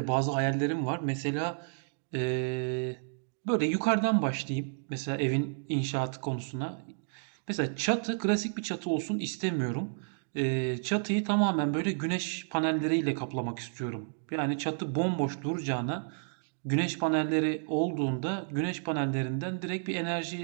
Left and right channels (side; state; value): left; silent; digital silence